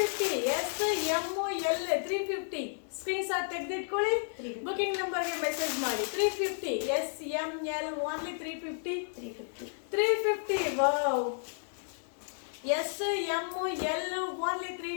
S, M, L 350. Screenshot ತೆಗೆದಿಟ್ಕೊಳ್ಳಿ, booking ನಂಬರ್ಗೆ message ಮಾಡಿ. 350. S, M, L only 350. Wow, S M L only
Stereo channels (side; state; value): right; silent; 56 dB below the other